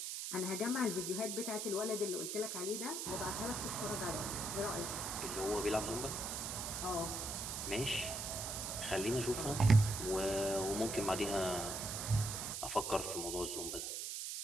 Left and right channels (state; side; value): noise; right; hiss, 4 dB below the sound